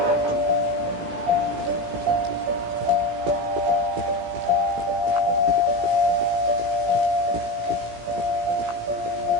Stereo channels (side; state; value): left; late; 17 ms